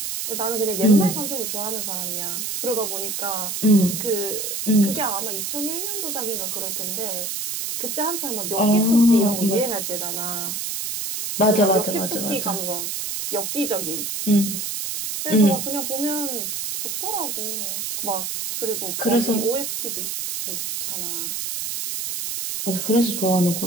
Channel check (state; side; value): noise; right; hiss, 3 dB below the sound